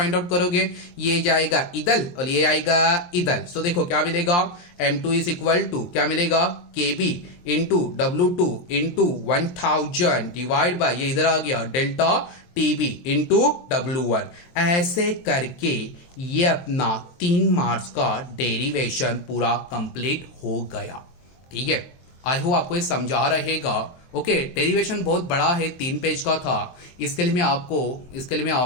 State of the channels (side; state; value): right; late; 23 ms